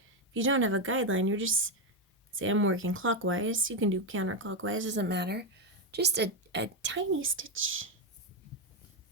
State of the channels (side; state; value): both; normal; correlation 0.07